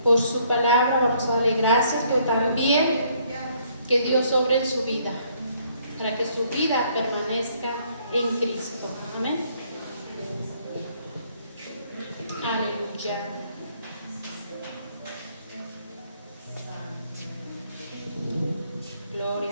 por su palabra, vamos a darle gracias, pero también que Dios obre en su vida, para que su vida permanezca en Cristo. Amén. Aleluya. Gloria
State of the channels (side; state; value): both; inverted; correlation -0.66